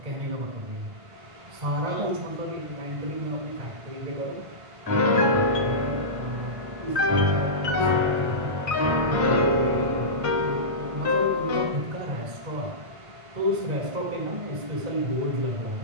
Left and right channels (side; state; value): left; late; 1.5 ms